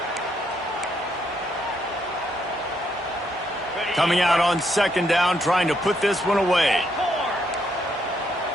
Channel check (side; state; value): both; normal; correlation 0.75